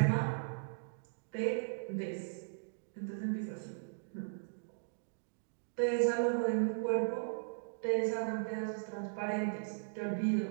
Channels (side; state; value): left; silent; digital silence